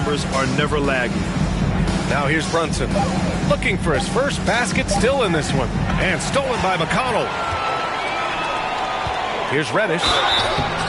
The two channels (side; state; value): both; identical; correlation 1.00